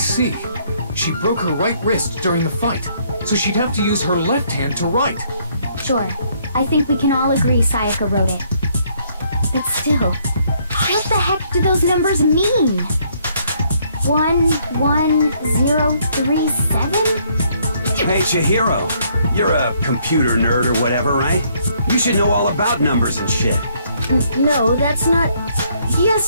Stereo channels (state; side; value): inverted; both; correlation -0.68